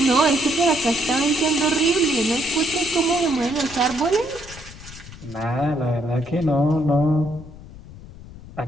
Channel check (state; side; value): noise; left; rumble, 17 dB below the sound